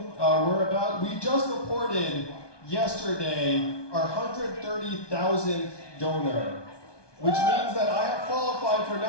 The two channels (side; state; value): right; late; 1.2 ms